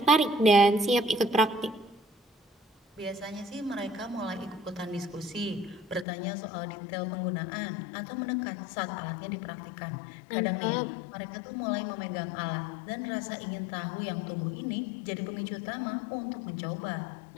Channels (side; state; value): right; drops out; at 6.1 s